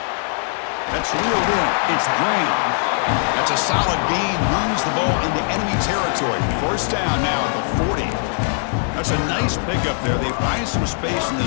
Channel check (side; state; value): right; silent; 65 dB below the other